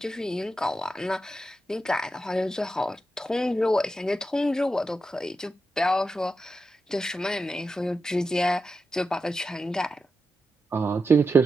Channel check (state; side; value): normal; both; correlation 0.88